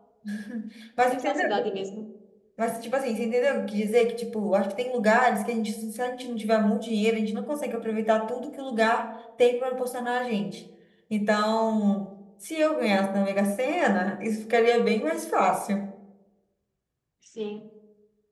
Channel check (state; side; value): identical; both; correlation 1.00